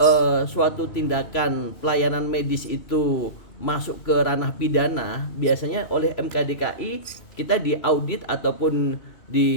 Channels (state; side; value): late; right; 3.0 ms